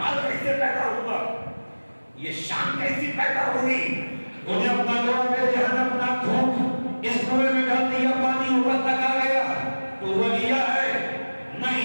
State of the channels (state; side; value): inverted; both; correlation -1.00